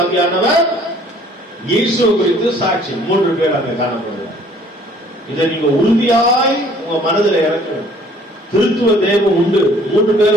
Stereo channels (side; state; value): both; normal; correlation 0.57